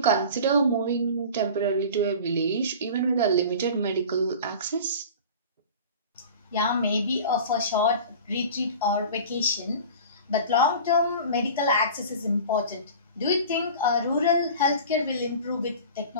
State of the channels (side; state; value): both; inverted; correlation -0.38